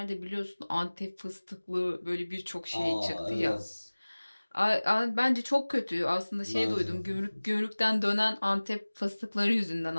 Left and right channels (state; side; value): inverted; both; correlation -1.00